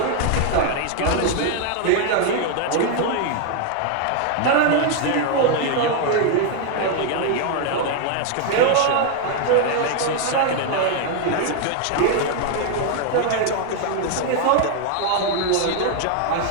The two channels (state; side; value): different; both; correlation 0.00